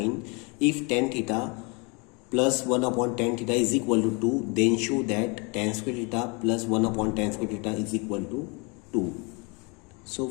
if tan theta plus 1 upon tan theta is equal to 2 then show that tan square theta plus 1 upon tan square theta is equal to 2। So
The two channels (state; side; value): quieter; right; 30.8 dB